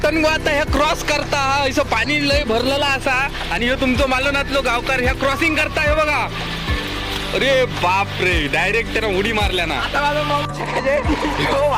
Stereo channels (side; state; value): both; identical; correlation 1.00